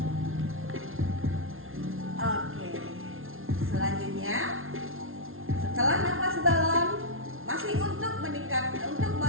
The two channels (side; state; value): left; late; 0.61 ms